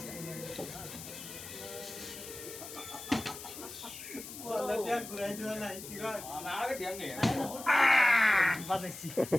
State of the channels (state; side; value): noise; left; hiss, 12 dB below the sound